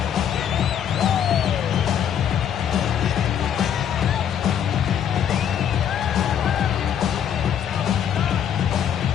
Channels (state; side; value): quieter; right; 8.9 dB